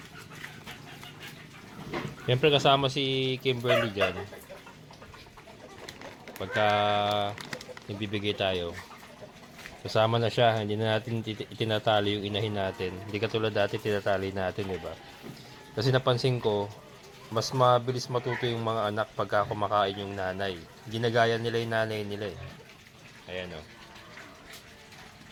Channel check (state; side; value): identical; both; correlation 1.00